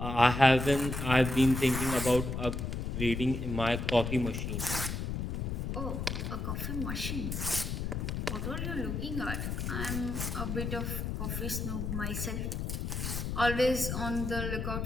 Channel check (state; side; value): noise; left; rumble, 3 dB below the sound